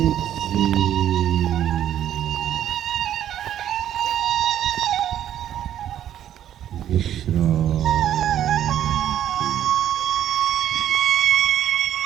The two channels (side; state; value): left; quieter; 11.0 dB